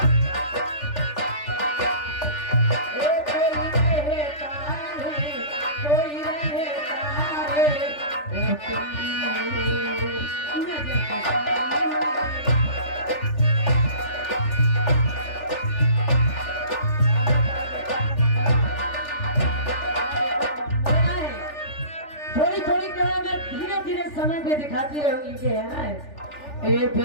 समय पे दिखाती रहूंगी कि है ना ये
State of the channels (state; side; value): late; right; 3.4 ms